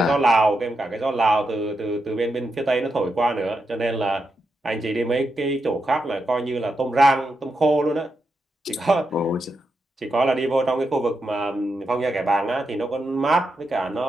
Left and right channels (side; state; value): both; normal; correlation 0.85